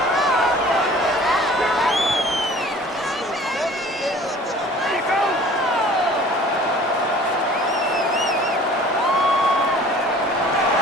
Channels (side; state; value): both; normal; correlation 0.48